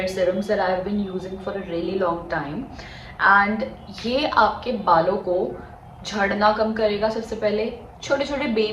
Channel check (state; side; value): identical; both; correlation 1.00